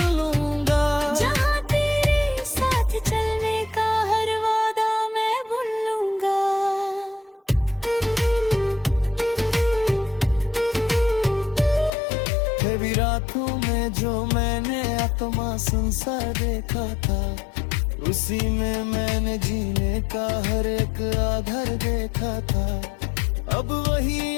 लूंगा। जहाँ तेरे साथ चलने का हर वादा मैं भूल लूंगा। कभी रातों में जो मैंने आत्मा संसार देखा था, उसी में मैंने जीने का हर एक आधार देखा था। अब वही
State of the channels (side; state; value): right; drops out; at 11.9 s